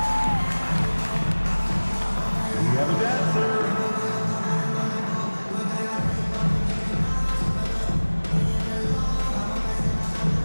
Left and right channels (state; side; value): inverted; both; correlation -1.00